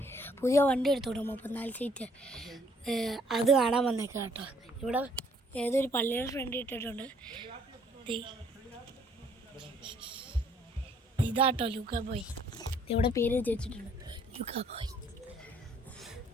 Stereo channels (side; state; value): both; normal; correlation 0.63